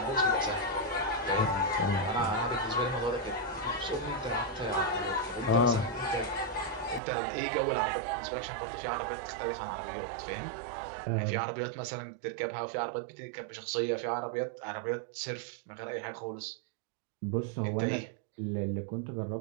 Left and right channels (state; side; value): drops out; left; at 7.0 s